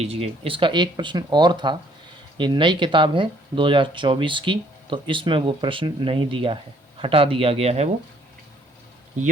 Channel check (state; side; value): normal; both; correlation 0.63